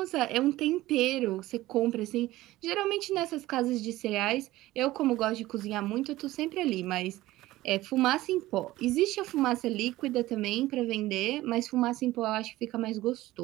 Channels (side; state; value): left; quieter; 16.9 dB